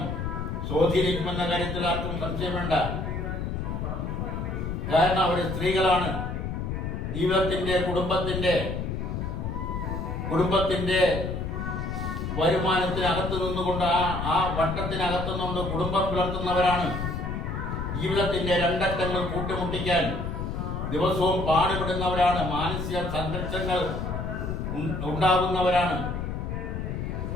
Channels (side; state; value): left; noise; rumble, 3 dB below the sound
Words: സ്വാധീനിക്കുമെന്ന കാര്യത്തിൽ ആർക്കും സംശയം വേണ്ട. കാരണം അവർ സ്ത്രീകളാണ്. ജീവിതത്തിന്റെ കുടുംബത്തിന്റെ വരുമാനത്തിനകത്ത് നിന്നുകൊണ്ട് ആ വട്ടത്തിനകത്തു നിന്നുകൊണ്ട് കുടുംബം പുലർത്തുന്നവരാണ്. ജീവിതത്തിന്റെ രണ്ടറ്റങ്ങൾ കൂട്ടിമുട്ടിക്കാൻ ദിവസവും പാടുപെടുന്നവരാണ്. മാനസിക സംഘർഷങ്ങൾ ഉണ്ടാകുന്നവരാണ്.